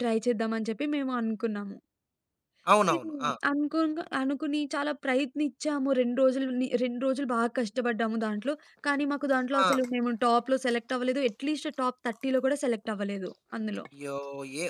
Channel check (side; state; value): both; identical; correlation 1.00